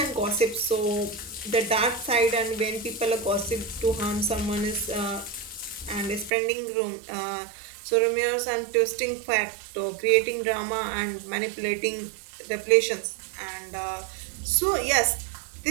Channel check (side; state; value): left; drops out; at 6.3 s